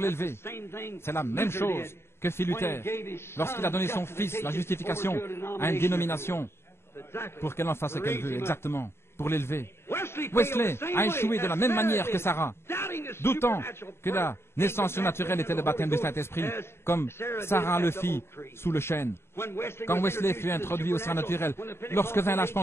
C'est la même chose que fit Luther, lorsqu'il a donné son fils, la justification, à une dénomination, pour qu'elle en fasse ce qu'elle veut, exactement, pour l'élever. Wesley a échoué de la même manière que Sarah, doutant que la naissance surnaturelle était le baptême du Saint-Esprit, comme Sarah le fit sous le chêne. Quand Wesley fut introduit au surnaturel, lorsque vint l'âge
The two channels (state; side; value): late; right; 0.12 ms